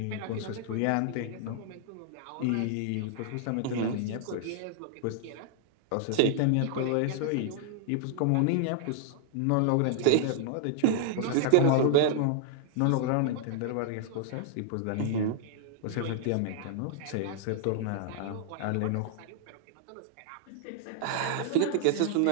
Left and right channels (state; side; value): different; both; correlation -0.01